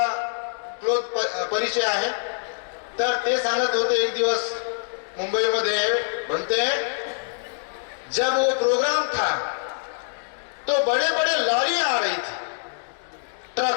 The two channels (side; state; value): right; silent; digital silence